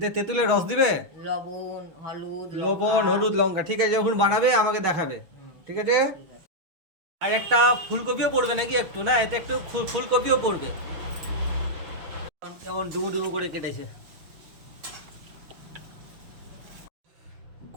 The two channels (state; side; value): late; left; 6.4 ms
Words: তেঁতুলের রস দিবে? লবণ হলুদ লবণ, লঙ্কা। হলুদ, লঙ্কা। ঠিক আছে, যখন বানাবে আমাকে দেখাবে। ঠিক আছে। ঠিক আছে। আর একটা ফুলকপিও পড়বে নাকি একটু? না, এতে একটু ফুলকপিও পড়বে। কেমন ডুমু ডুমু করে কেটেছে।